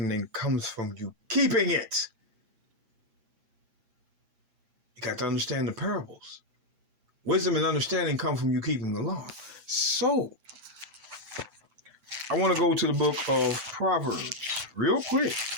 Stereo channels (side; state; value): left; late; 7.9 ms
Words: comes from you keeping it. You got to understand the parables. Wisdom and understanding come from you keeping the law. So I want to go to the book of Proverbs real quick.